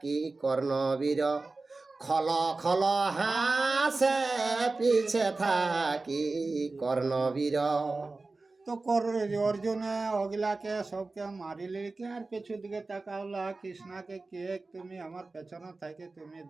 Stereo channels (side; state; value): left; quieter; 3.5 dB